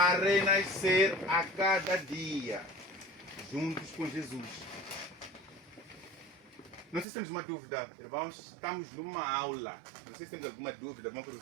renascer a cada dia, juntos com Jesus. Não sei se temos uma dúvida, irmãos, estamos numa aula. Não sei se temos alguma dúvida, alguma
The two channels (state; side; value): drops out; left; at 7.1 s